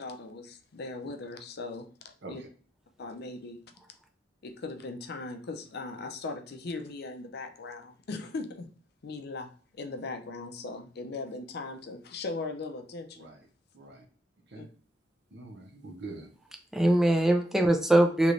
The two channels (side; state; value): both; normal; correlation 0.81